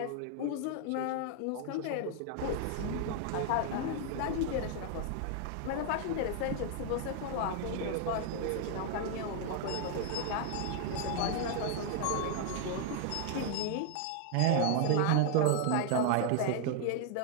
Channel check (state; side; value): different; both; correlation 0.00